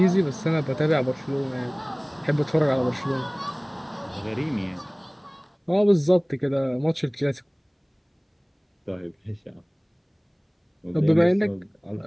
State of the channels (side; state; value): both; identical; correlation 1.00